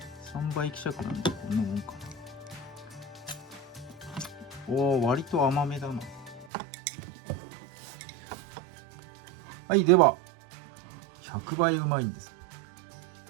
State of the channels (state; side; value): drops out; left; at 6.5 s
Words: 3倍希釈なんでこんなもんかな。おー、割と甘めだな。はい、では100倍うまいんです。